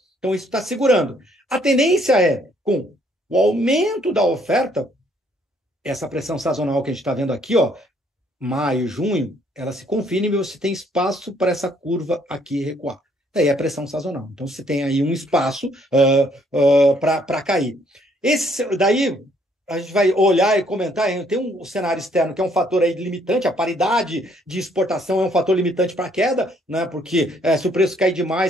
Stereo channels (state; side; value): normal; both; correlation 0.66